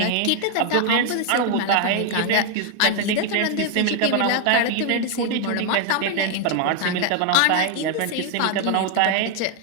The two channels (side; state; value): both; different; correlation 0.00